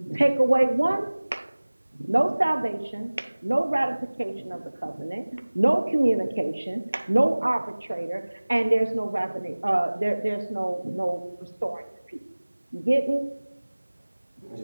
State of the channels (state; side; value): inverted; both; correlation -1.00